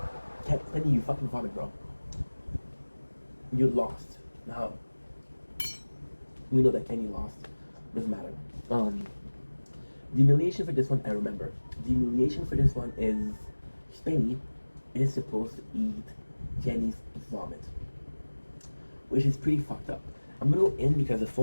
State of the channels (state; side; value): inverted; both; correlation -1.00